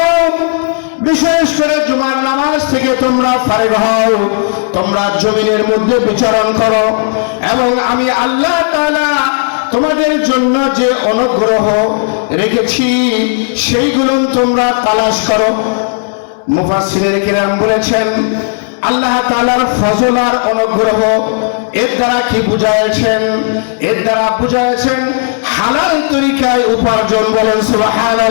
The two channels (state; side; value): silent; right; digital silence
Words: হও, বিশেষ করে জুমার নামাজ থেকে তোমরা ফারেগ হও, তোমরা জমিনের মধ্যে বিচরণ করো এবং আমি আল্লাহ তাআলা তোমাদের জন্য যে অনুগ্রহ রেখেছি সেইগুলো তোমরা তালাশ করো। মুফাসসিরিনে কিরাম বলেছেন, আল্লাহ তাআলার ফজল আর অনুগ্রহ এর দ্বারা কি বুঝাইছেন? এর দ্বারা বুঝাইছেন হালাল তরিকায় উপার্জন। বলেন